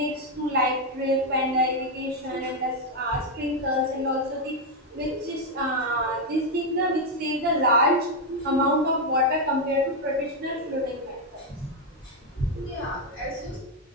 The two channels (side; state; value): both; normal; correlation 0.03